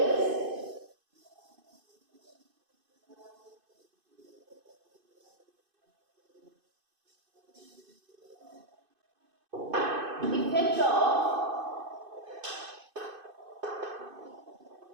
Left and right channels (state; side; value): late; left; 2.5 ms